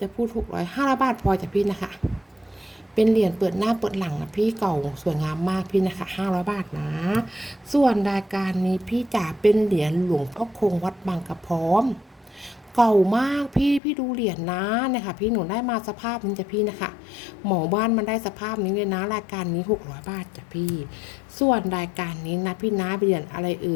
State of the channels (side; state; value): right; drops out; at 13.8 s